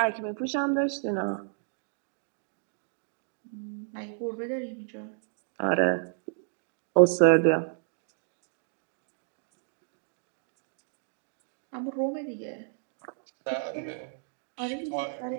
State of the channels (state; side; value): silent; left; digital silence